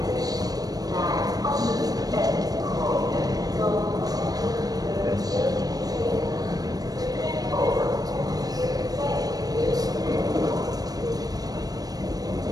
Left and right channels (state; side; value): late; left; 0.18 ms